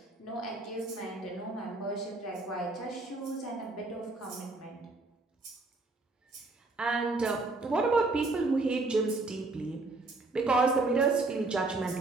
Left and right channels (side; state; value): left; quieter; 3.3 dB